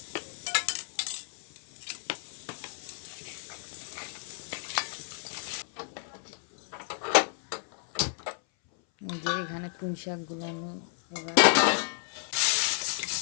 যে এখানে পুঁই শাকগুলো আমি এবার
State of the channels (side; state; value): right; silent; 57 dB below the other